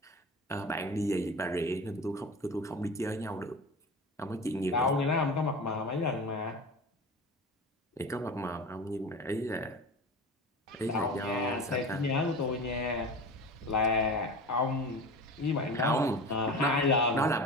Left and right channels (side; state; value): both; normal; correlation 0.32